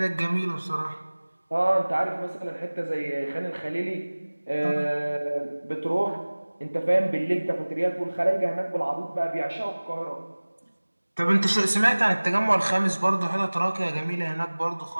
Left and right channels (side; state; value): both; inverted; correlation -1.00